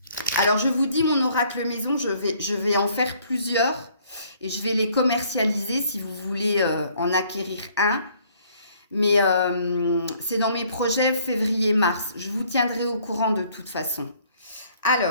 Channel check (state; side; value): inverted; both; correlation -0.62